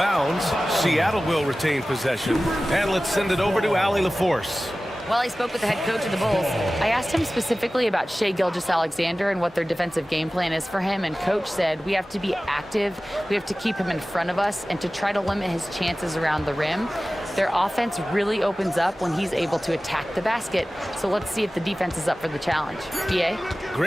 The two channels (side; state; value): both; normal; correlation 0.96